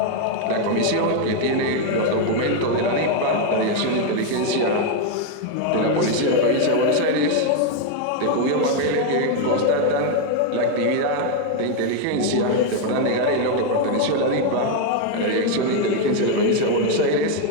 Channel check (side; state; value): both; different; correlation 0.01